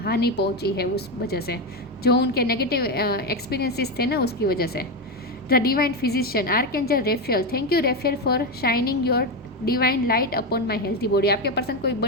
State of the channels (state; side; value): normal; both; correlation 0.11